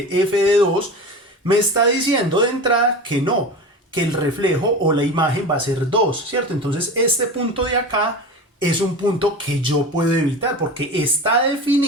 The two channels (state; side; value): normal; both; correlation 0.31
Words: f de 2, me está diciendo de entrada que no, que el reflejo o la imagen va a ser 2, ¿cierto? Entonces este punto de acá es un punto que yo puedo evitar porque está